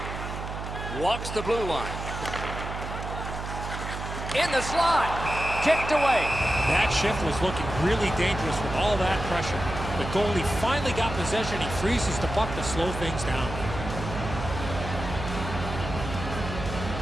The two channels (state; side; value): noise; right; hum, 7 dB below the sound